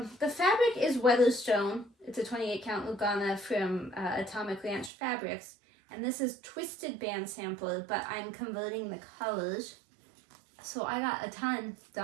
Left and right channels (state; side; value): drops out; left; at 4.9 s